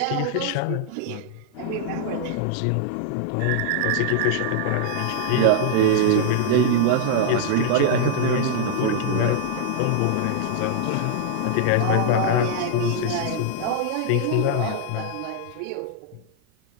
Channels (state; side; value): different; both; correlation -0.01